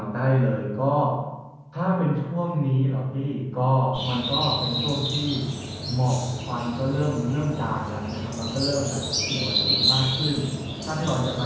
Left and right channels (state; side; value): identical; both; correlation 1.00